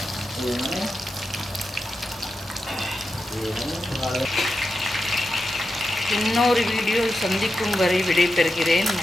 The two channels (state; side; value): normal; both; correlation 0.89